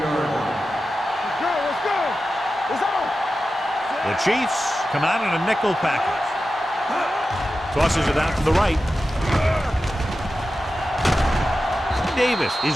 line. Let's go. It's on. The Chiefs come out in a nickel package. Tosses it out to the right. Davis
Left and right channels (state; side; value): normal; both; correlation 0.92